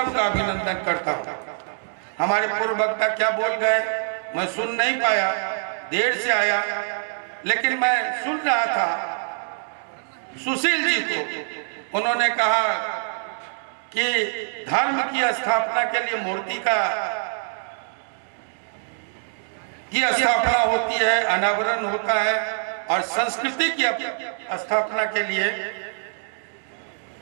का अभिनंदन करता हूं। हमारे पूर्व वक्ता क्या बोल गए मैं सुन नहीं पाया, देर से आया, लेकिन मैं सुन रहा था सुशील जी को। उन्होंने कहा कि धर्म की स्थापना के लिए मूर्ति की स्थापना होती है, अनावरण होता है, और संस्कृति की स्थापना के लिए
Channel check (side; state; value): left; silent; digital silence